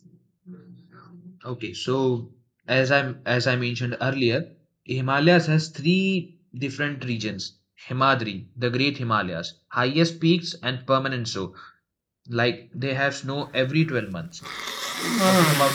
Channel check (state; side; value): identical; both; correlation 1.00